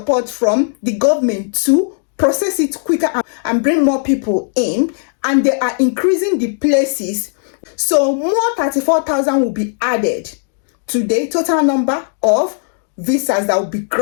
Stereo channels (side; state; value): right; silent; digital silence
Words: from the government to process it quicker and bring more people in, and they are increasing the places. So more 34,000 will be added to the total number of visas that will be